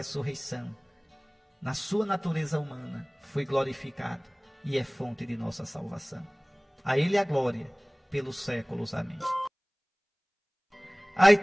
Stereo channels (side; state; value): both; identical; correlation 1.00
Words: na sua natureza humana, foi glorificado e é fonte de nossa salvação. A Ele a glória pelos séculos. Amém. Aí